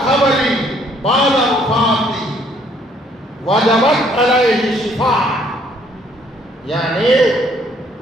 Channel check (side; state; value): both; normal; correlation 0.64